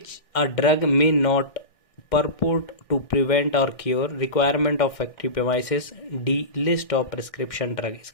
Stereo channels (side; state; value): right; late; 1.6 ms